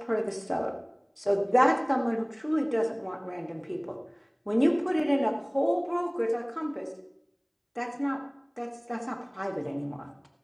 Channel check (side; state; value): both; identical; correlation 1.00